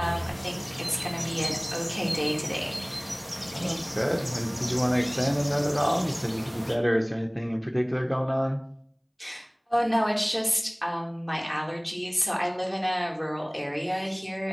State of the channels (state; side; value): identical; both; correlation 1.00